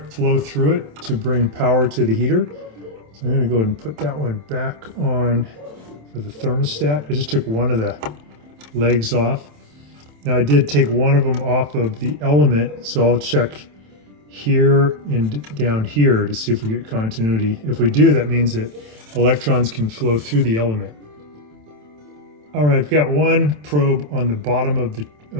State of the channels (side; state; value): left; late; 27 ms